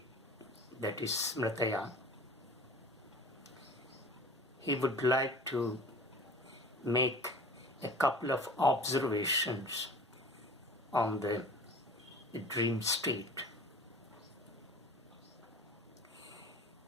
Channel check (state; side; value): normal; both; correlation 0.42